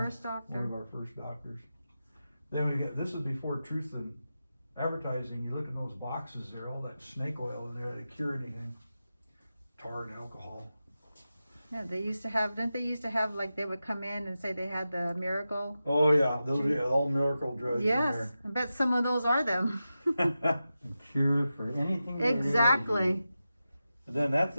doctor. One of our first doctors. Then we get, this is before Truth in Advertising. You look in those boxes there, all that snake oil in there to cure anything. Tar and alcohol. Yeah, didn't they used to have they would come in and say they had the miracle? Oh yeah, those are all miracle drugs in Yes, there. I bet some of those are them. Cure for anything. Exactly. And then that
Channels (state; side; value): inverted; both; correlation -0.92